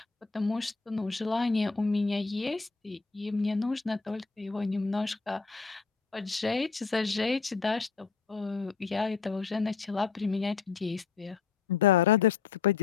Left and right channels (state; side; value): quieter; right; 5.3 dB